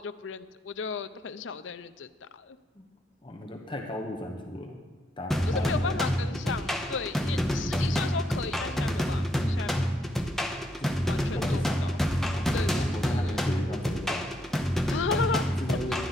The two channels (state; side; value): normal; both; correlation 0.76